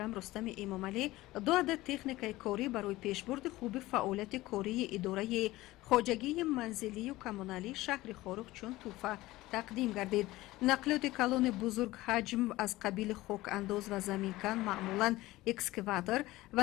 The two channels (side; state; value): right; quieter; 18.1 dB